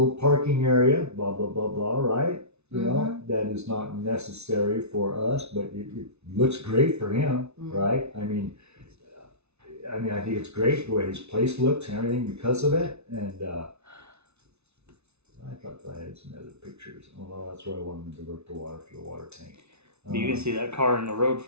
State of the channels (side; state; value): left; late; 0.81 ms